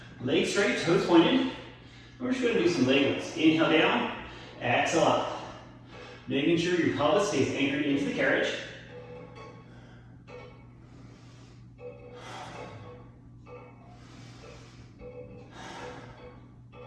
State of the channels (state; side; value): identical; both; correlation 1.00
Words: legs straight, toes pointed. We're just going to do some leg lifts. Inhale down, exhale up. Making sure your pelvis stays anchored into the carriage.